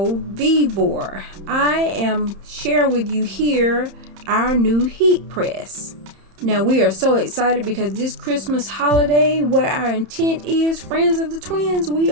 Vevor. I am sharing with you here our new heat press. Now we are so excited because this Christmas holiday, what our intent is, friends of the twins, we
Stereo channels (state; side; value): late; left; 31 ms